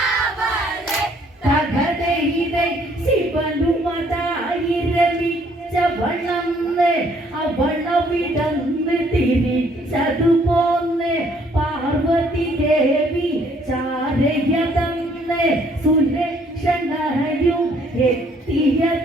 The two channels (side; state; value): both; normal; correlation 0.64